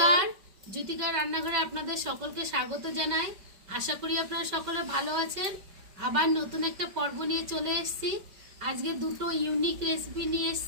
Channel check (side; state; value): left; late; 5.2 ms